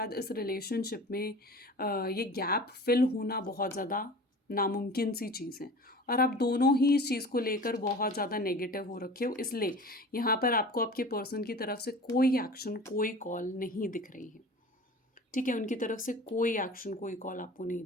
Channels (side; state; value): both; normal; correlation 0.40